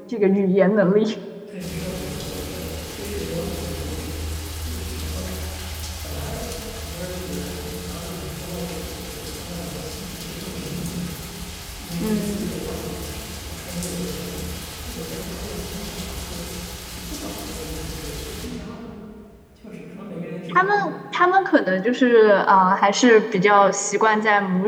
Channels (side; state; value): both; identical; correlation 1.00